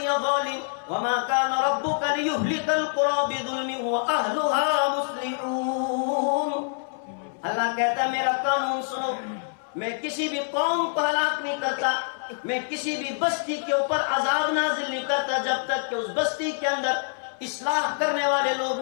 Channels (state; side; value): silent; right; 61 dB below the other